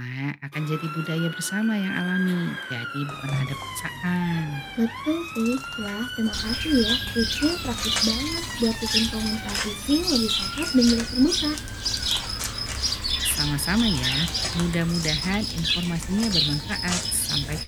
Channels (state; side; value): identical; both; correlation 1.00